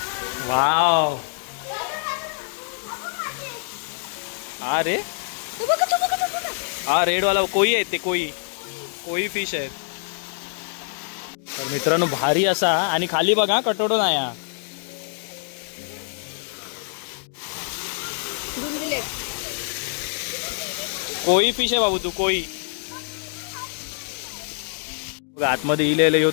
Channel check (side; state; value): right; silent; digital silence